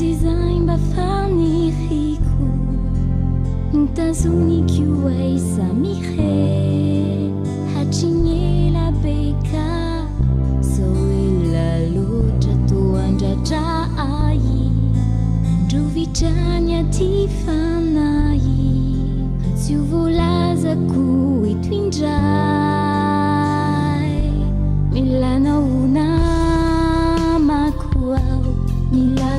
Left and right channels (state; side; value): identical; both; correlation 1.00